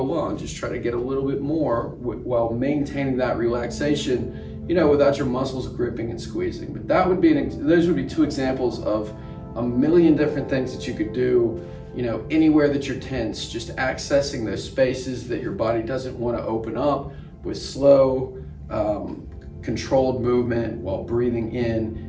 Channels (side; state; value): both; identical; correlation 1.00